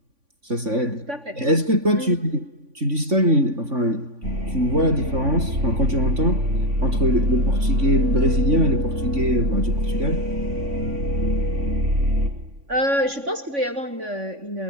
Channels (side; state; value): left; late; 3.5 ms